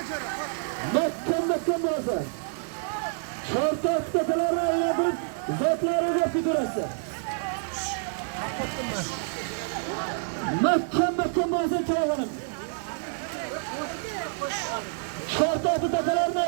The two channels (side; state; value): left; silent; digital silence